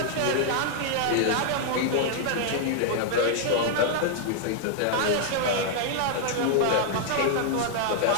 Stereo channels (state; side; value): different; both; correlation -0.01